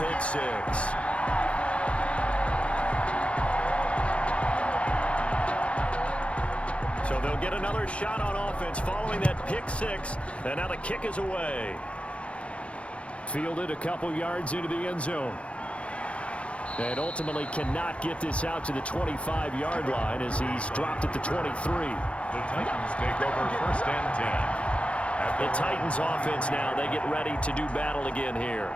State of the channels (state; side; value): late; right; 0.061 ms